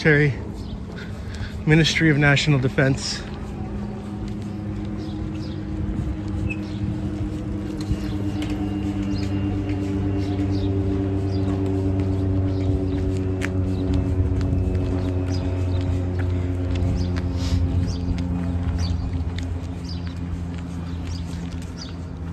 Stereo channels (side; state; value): both; identical; correlation 1.00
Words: Ministry of National Defense.